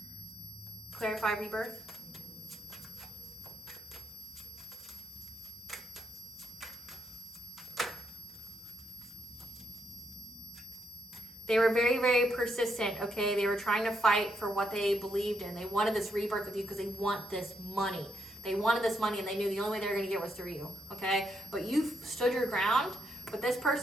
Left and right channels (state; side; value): normal; both; correlation 0.79